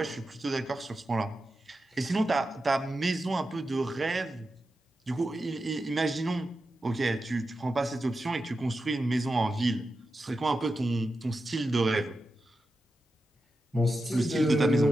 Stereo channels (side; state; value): both; normal; correlation 0.90